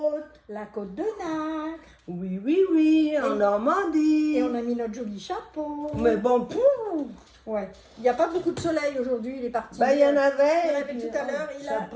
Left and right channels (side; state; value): both; identical; correlation 1.00